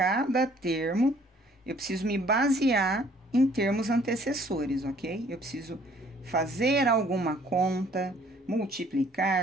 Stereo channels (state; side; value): normal; both; correlation 0.59